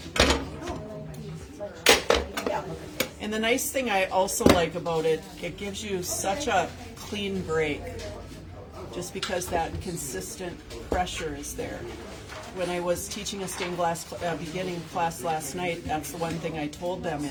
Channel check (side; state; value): both; identical; correlation 1.00